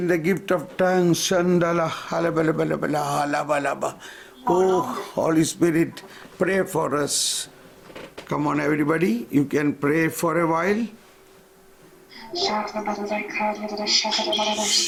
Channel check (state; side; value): identical; both; correlation 1.00